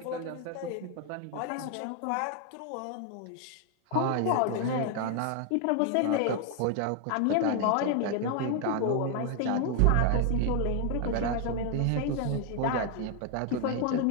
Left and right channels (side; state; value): both; different; correlation 0.00